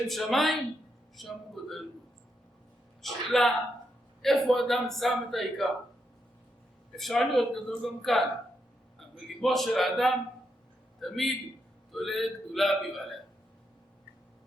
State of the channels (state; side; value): normal; both; correlation 0.81